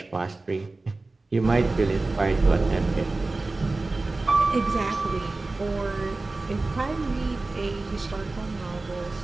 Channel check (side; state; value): left; quieter; 3.3 dB